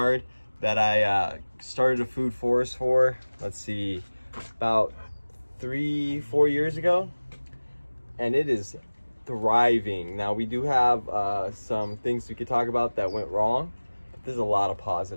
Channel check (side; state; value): both; inverted; correlation -1.00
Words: that I started a food forest for, let's see, about 3-4 years ago, and it is thriving. Now we do have some things we could talk about that went wrong, but there's a lot of